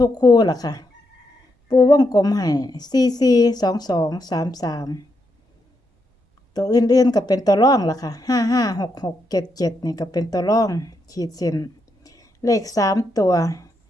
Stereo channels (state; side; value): normal; both; correlation 0.81